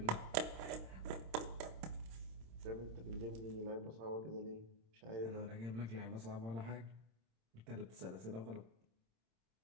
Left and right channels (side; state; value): left; late; 26 ms